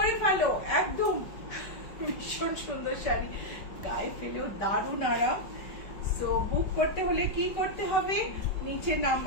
ফেলো, একদম ভীষণ সুন্দর শাড়ি, গায়ে ফেলেও দারুণ আরাম। সো বুক করতে হলে কি করতে হবে, নিচে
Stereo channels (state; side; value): late; right; 5.3 ms